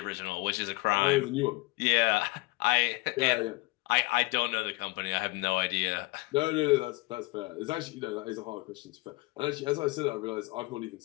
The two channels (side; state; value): right; quieter; 24.3 dB